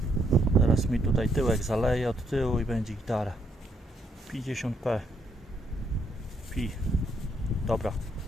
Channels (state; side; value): normal; both; correlation 0.74